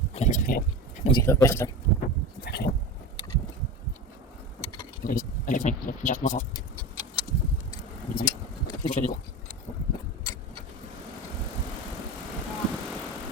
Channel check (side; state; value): both; normal; correlation 0.28